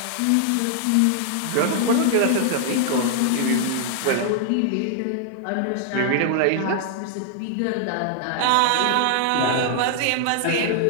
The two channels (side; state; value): both; different; correlation 0.00